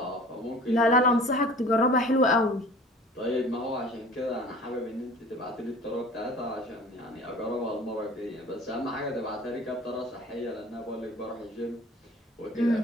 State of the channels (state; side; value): normal; both; correlation 0.45